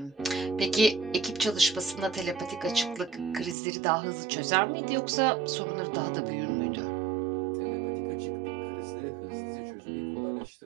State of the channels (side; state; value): left; drops out; at 3.6 s